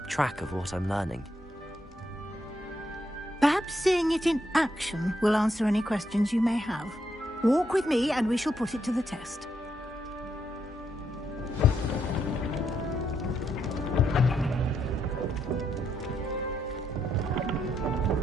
track of what I'm learning? Perhaps seeing it in action will answer any questions you may have. Walk with me and we shall put it to the test.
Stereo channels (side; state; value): both; normal; correlation 0.78